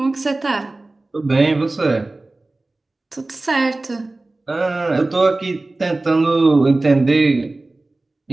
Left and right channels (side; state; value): left; quieter; 3.0 dB